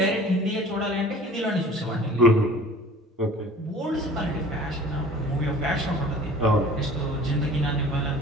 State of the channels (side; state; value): both; normal; correlation 0.46